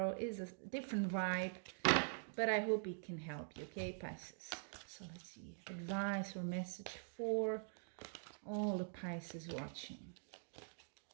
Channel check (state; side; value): silent; left; digital silence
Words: it's a different vibe, but I hope it can help you, okay, Pisces? So let's see, advice or message for all the Pisces watching.